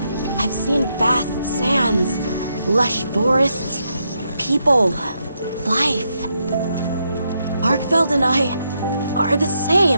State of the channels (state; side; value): inverted; both; correlation -0.80